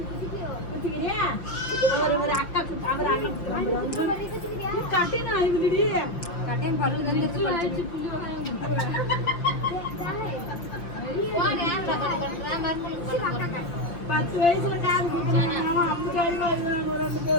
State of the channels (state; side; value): late; right; 5.9 ms